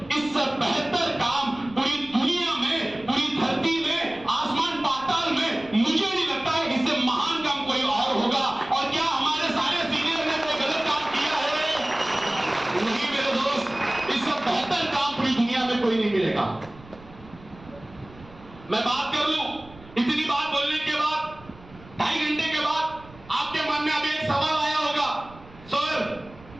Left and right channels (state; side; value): noise; right; rumble, 21 dB below the sound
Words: इससे बेहतर काम पूरी दुनिया में, पूरी धरती में, आसमान पाताल में मुझे नहीं लगता है इससे महान काम कोई और होगा। और क्या हमारे सारे सीनियर ने कोई गलत काम किया है? नहीं मेरे दोस्त, इससे बेहतर काम पूरी दुनिया में कोई नहीं मिलेगा। मैं बात कर लूं, इतनी बात बोलने के बाद 2.5 घंटे के बाद आपके मन में अभी एक सवाल आया होगा, सर